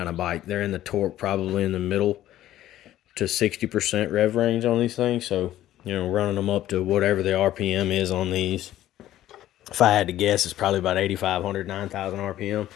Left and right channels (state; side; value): quieter; right; 13.4 dB